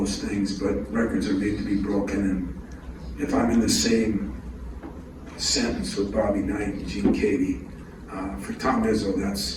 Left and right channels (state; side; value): identical; both; correlation 1.00